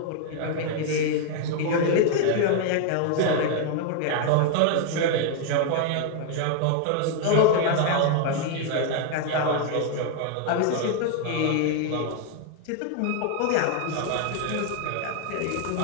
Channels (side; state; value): both; different; correlation 0.00